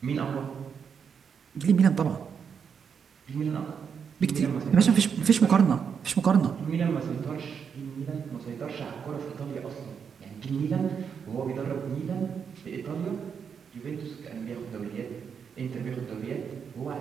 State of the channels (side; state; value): left; quieter; 6.8 dB